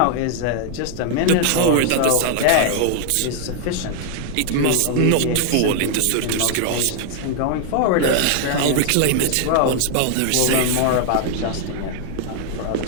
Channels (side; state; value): both; different; correlation 0.00